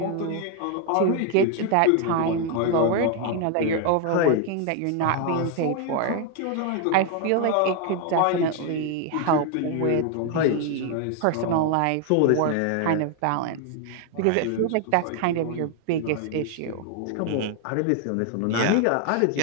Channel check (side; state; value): both; different; correlation 0.01